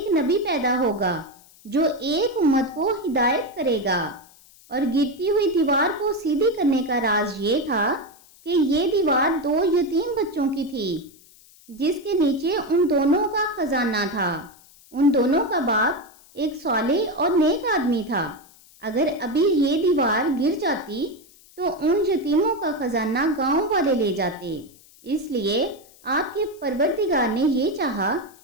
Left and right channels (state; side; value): noise; left; hiss, 26 dB below the sound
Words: نبی پیدا ہوگا جو ایک امت کو ہدایت کرے گا۔ اور گرتی ہوئی دیوار کو سیدھی کرنے کا راز یہ تھا کہ یہ دیوار 2 یتیم بچوں کی تھی جس کے نیچے ان دونوں کا خزانہ تھا۔ ان دونوں کا باپ ایک صالح اور نیک آدمی تھا۔ اگر ابھی یہ دیوار گر جاتی تو ان یتیموں کا خزانہ گاؤں والے لے جاتے، اس لیے آپ کے پروردگار نے یہ چاہا